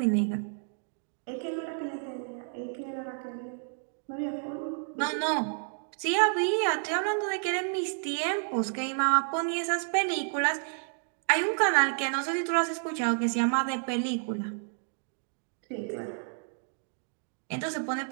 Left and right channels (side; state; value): left; silent; 56 dB below the other